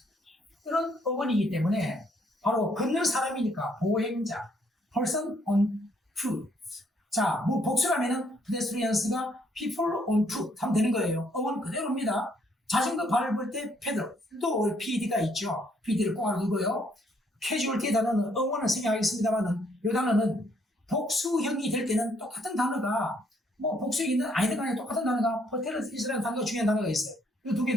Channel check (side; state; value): both; normal; correlation 0.68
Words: 이런 어원이기 때문에 바로 걷는 사람이니까 보행자, person on foot. 자, 뭐 복수라면은 pedestrians가 people on foot 하면 되는 거예요. 어원 그대로입니다. 자전거 밟을 때 pedal 또 PED가 있죠. PED를 꼭 알아두고요. casualty 단어는 어원을 생략하겠습니다만은 이 단어는 복수형이 될 때는 똑같은 단어가 뭐 복수형이든 아니든 간에 똑같은 단어가 퍼테르스라는 단어가 중요한 단어가 있어요. 이 두 개